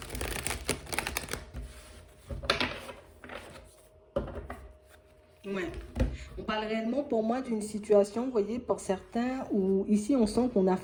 Ouais. On parle réellement pour moi d'une situation, vous voyez, pour certains, où ici on sent qu'on a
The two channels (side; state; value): both; identical; correlation 1.00